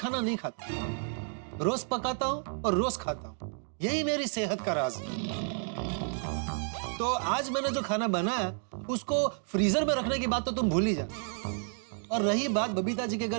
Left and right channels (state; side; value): silent; left; 57 dB below the other